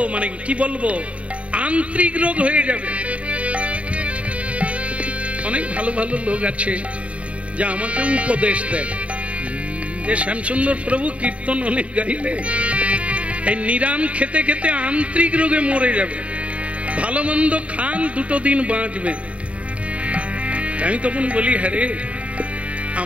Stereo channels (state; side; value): late; left; 0.064 ms